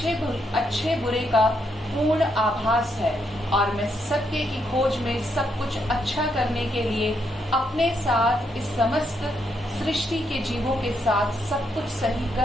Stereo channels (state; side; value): normal; both; correlation 0.78